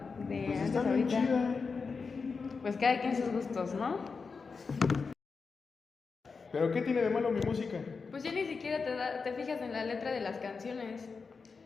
de Pues antes está a bien ahorita? chida. Pues cada quien sus gustos, ¿no? ¿Pero qué tiene de malo mi música? Pues ya ni siquiera te fijas en la letra de las canciones.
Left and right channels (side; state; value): right; quieter; 4.9 dB